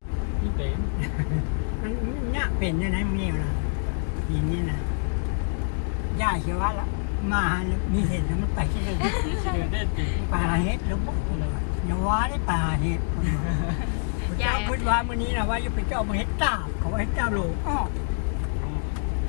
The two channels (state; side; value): silent; right; digital silence